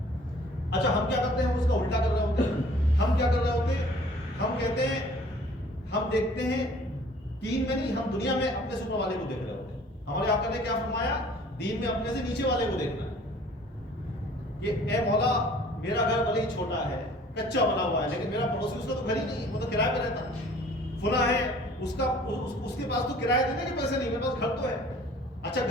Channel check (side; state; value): both; normal; correlation 0.52